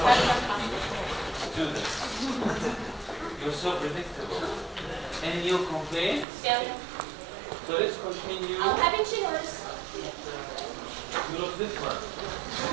Students, you're so predictable. Any new complaints? Yeah. So let's continue. I'm having chinos. You look different.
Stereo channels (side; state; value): left; drops out; at 6.2 s